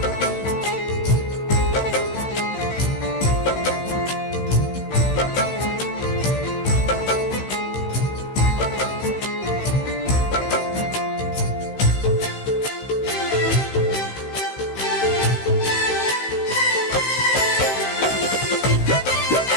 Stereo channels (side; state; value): right; late; 15 ms